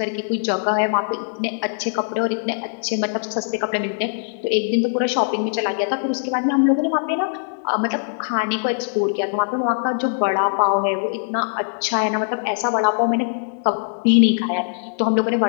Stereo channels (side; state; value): right; silent; digital silence